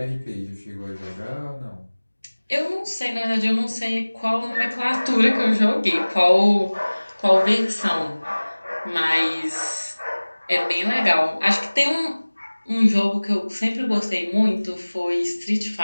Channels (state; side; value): inverted; both; correlation -1.00